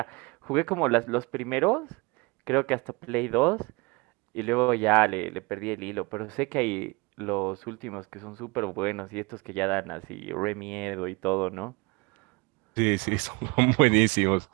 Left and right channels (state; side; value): quieter; left; 26.4 dB